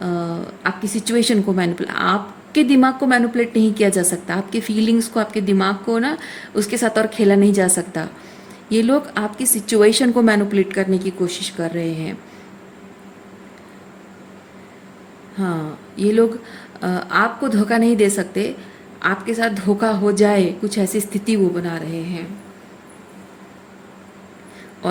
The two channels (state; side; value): identical; both; correlation 1.00